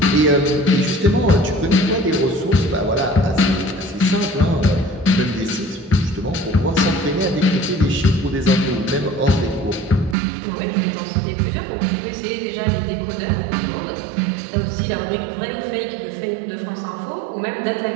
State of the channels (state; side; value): drops out; left; at 10.2 s